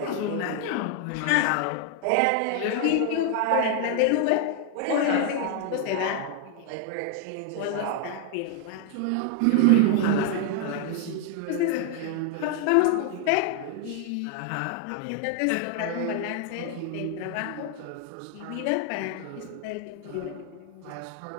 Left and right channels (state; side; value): different; both; correlation 0.00